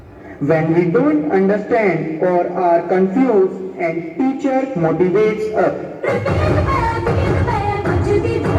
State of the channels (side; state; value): both; identical; correlation 1.00